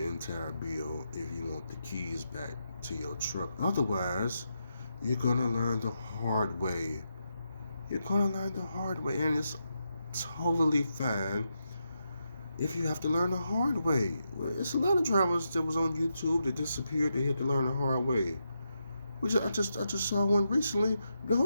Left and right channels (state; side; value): inverted; both; correlation -0.84